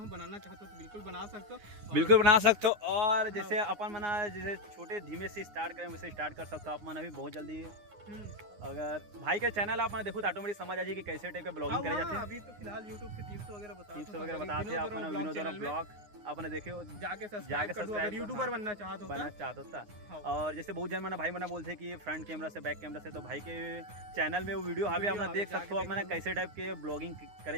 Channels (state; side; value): late; left; 9.7 ms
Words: चाहते तो बिल्कुल बना सकते हो और जैसे अपन मना जैसे छोटे धीमे से स्टार्ट करें वैसे स्टार्ट कर सकते हो आप मन अभी बहुत जल्दी अगर भाई के चैनल आप मैंने देखो तो ऑटोमेटिक समझ आ जाए कि कैसे टाइप का ब्लॉगिंग करे जाते हैं। अभी तो फिलहाल YouTube के टिप्स वगैरह बताते हैं आप विनोद वाला ब्लॉग आपने देखे जाके सब्सक्राइब यूट्यूबर बनना चाहता था। और जैसे बहुत जन मैंने भाई मैंने बोलते कि फ्रंट कैमरा से बैक कैमरा से तो भाई के चैनल में वो वीडियो अभी आपने देख सकते हो आप मैंने कैसे टाइप के ब्लॉगिंग